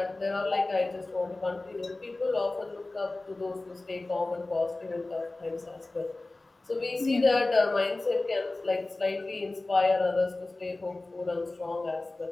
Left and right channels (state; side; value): quieter; right; 3.0 dB